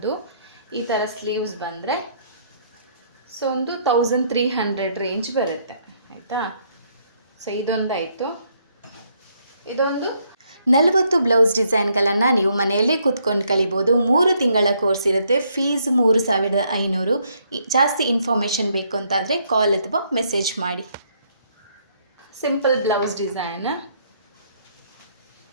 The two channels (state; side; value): inverted; both; correlation -0.70